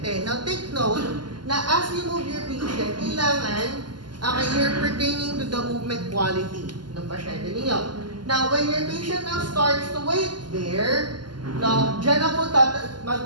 Now, take note na as you move your patient, kailangan you're pertaining to the movement quality ng pasyente ninyo. Now, when your patient now starts to wait there, now, dyan na po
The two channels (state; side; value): late; left; 0.71 ms